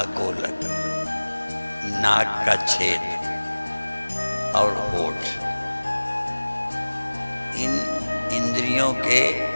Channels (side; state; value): both; inverted; correlation -1.00